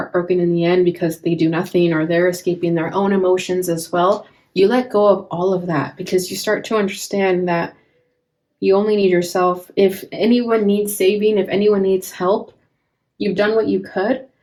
in the end because they do nothing or they're escaping their own emotions as well. You let go of all of that because you start to understand that you only need yourself. If anyone needs saving, if anyone needs help, you've done what you could,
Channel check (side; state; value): both; identical; correlation 1.00